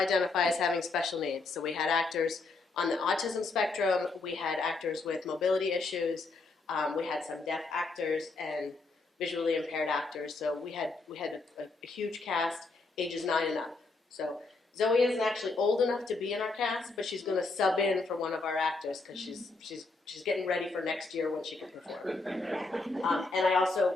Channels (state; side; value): quieter; right; 3.6 dB